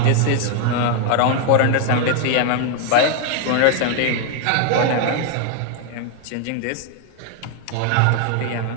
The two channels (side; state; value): both; different; correlation 0.00